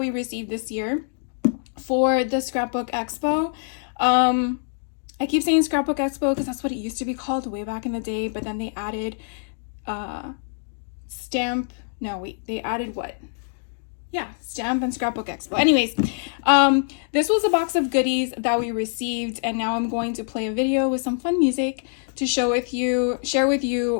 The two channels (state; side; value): silent; right; digital silence